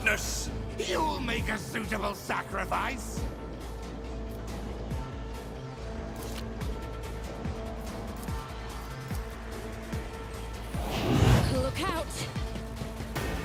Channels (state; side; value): identical; both; correlation 1.00